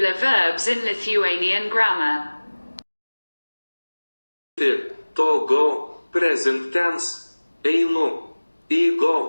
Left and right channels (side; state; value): both; inverted; correlation -1.00